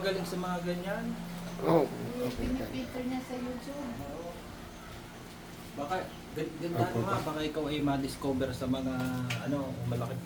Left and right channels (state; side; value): identical; both; correlation 1.00